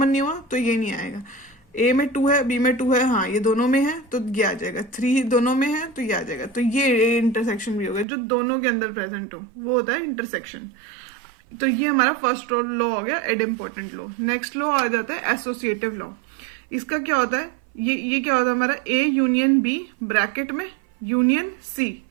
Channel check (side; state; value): left; drops out; at 8.1 s